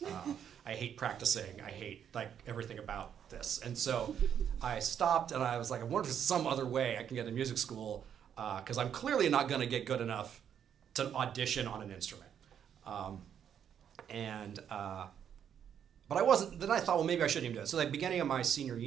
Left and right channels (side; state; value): left; quieter; 8.7 dB